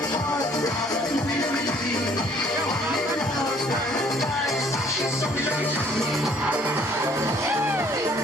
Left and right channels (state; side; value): normal; both; correlation 0.59